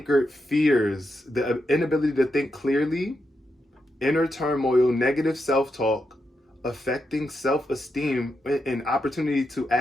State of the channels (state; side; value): normal; both; correlation 0.84